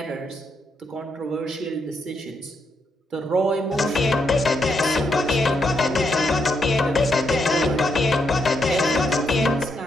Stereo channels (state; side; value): normal; both; correlation 0.79